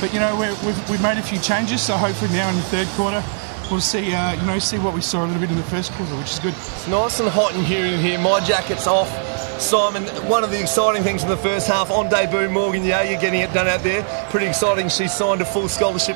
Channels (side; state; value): left; silent; digital silence